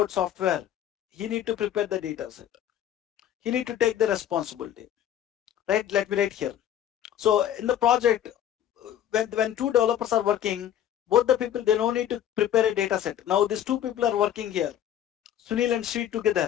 software, he need to prepare the data set. He need to take the responsibility. Right? Let me write here. So in the project, when two developers are working, both the people, they don't need to prepare a data set. Now these two people are working here, Sunil and Sri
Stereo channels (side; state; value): right; quieter; 10.7 dB